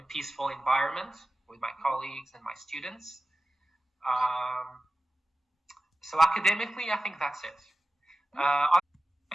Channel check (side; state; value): both; normal; correlation 0.95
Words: a peaceful environment with my colleagues and my students. So academically, I think that's it.